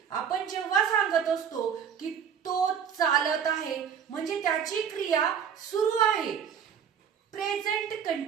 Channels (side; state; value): left; quieter; 7.9 dB